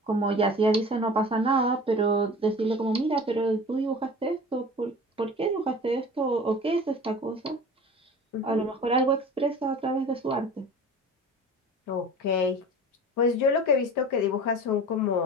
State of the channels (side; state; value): both; normal; correlation 0.39